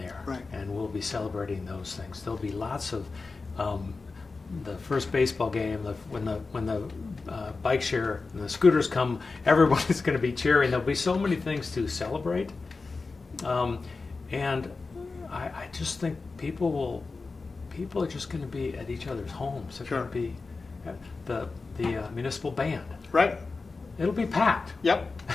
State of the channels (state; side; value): quieter; right; 4.0 dB